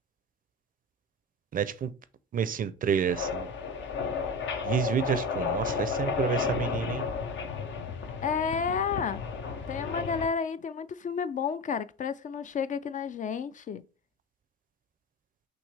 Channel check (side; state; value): both; normal; correlation 0.27